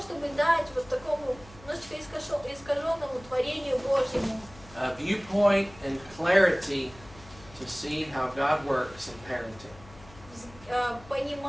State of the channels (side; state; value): left; noise; hum, 21 dB below the sound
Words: дать вот такому немножечко искаженному творению Божьему a viewpoint and clarity to see how God works in parenting.